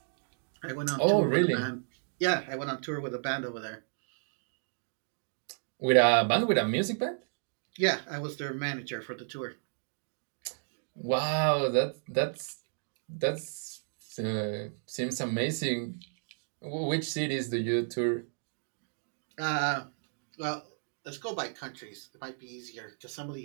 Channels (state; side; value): silent; left; digital silence